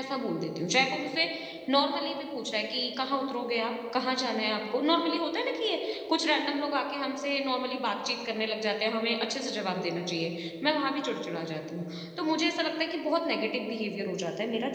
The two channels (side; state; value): both; identical; correlation 1.00